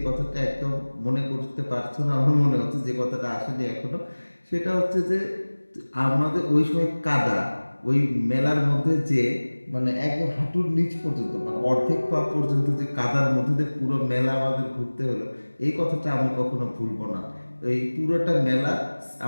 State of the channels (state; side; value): inverted; both; correlation -1.00